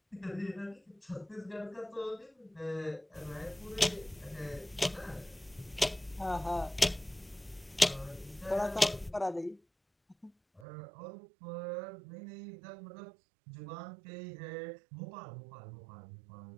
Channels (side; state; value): left; drops out; at 10.7 s